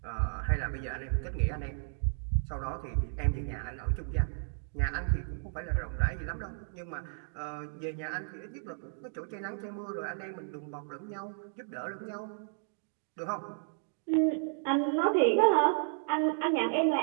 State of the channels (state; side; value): silent; left; digital silence